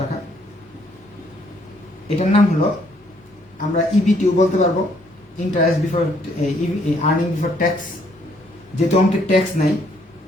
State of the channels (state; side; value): normal; both; correlation 0.67